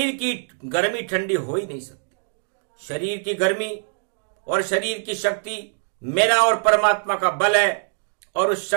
की गर्मी ठंडी हो ही नहीं सकती। शरीर की गर्मी और शरीर की शक्ति मेरा और परमात्मा का बल है। और उस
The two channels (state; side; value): silent; left; digital silence